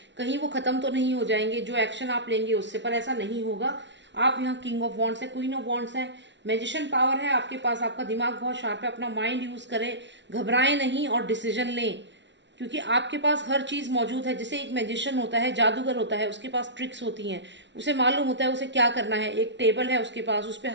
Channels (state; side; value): late; left; 0.52 ms